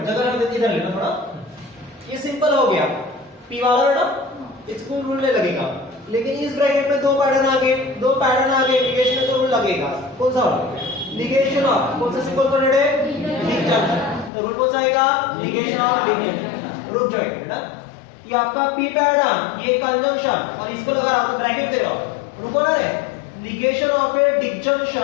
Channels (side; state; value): right; drops out; at 14.3 s